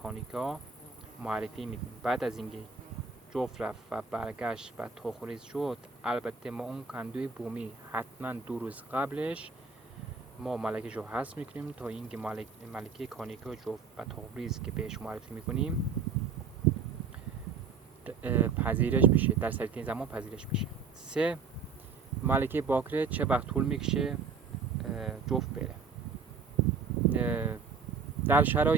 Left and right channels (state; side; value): quieter; left; 5.3 dB